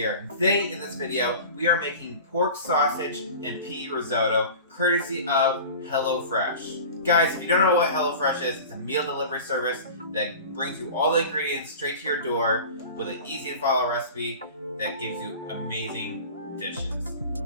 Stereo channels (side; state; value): both; inverted; correlation -0.37